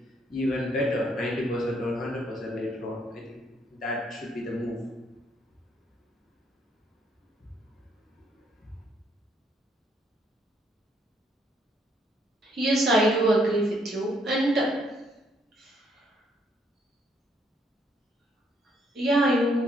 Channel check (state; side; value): normal; both; correlation 0.70